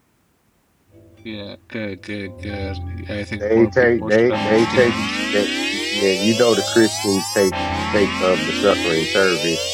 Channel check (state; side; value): identical; both; correlation 1.00